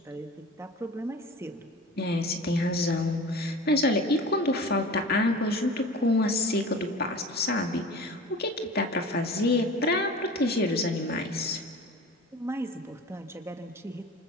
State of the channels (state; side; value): normal; both; correlation 0.37